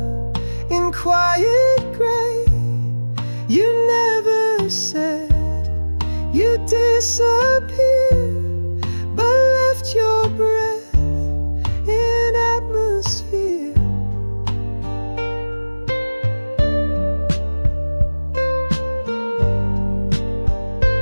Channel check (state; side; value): inverted; both; correlation -1.00